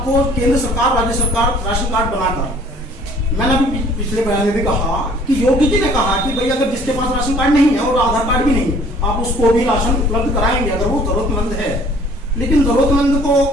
केंद्र सरकार, राज्य सरकार राशन कार्ड बनाकर, मैंने अभी पिछले बयान में भी कहा कि योगी जी ने कहा कि भाई अगर जिसके पास राशन कार्ड नहीं है और आधार कार्ड भी नहीं है, आप उसको भी राशन उपलब्ध कराएंगे अगर वो जरूरतमंद है। लेकिन जरूरतमंद को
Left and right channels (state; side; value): normal; both; correlation 0.54